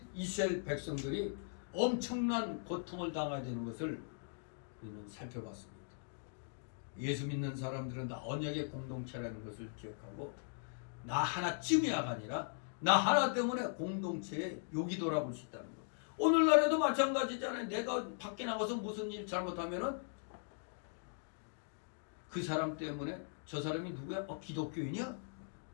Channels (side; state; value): right; silent; digital silence